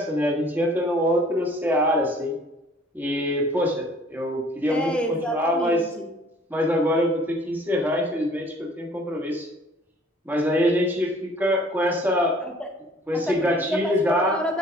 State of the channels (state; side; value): normal; both; correlation 0.54